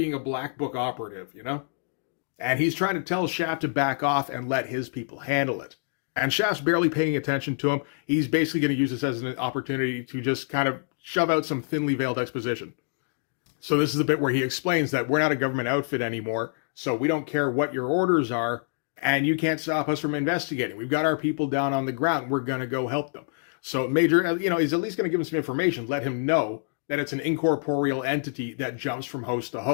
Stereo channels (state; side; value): silent; right; digital silence